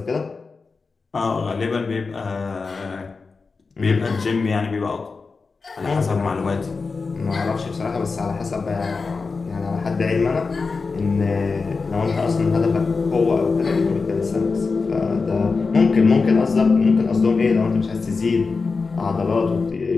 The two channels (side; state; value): right; quieter; 4.4 dB